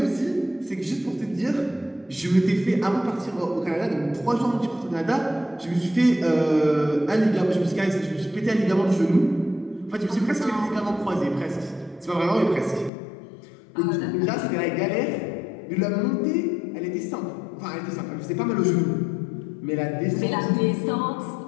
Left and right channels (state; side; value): drops out; right; at 12.9 s